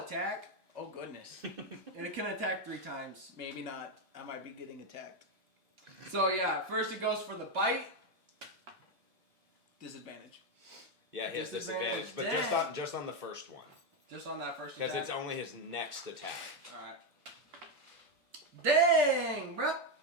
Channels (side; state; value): left; late; 2.7 ms